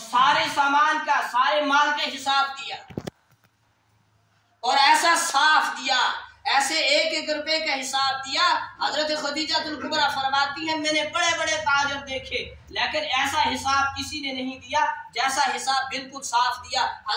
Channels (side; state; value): both; identical; correlation 1.00